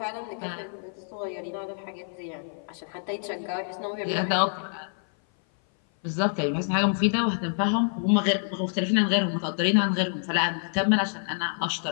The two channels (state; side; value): silent; right; 56 dB below the other